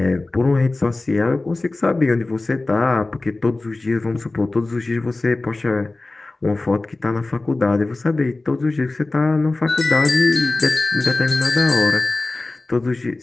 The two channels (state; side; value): quieter; right; 3.1 dB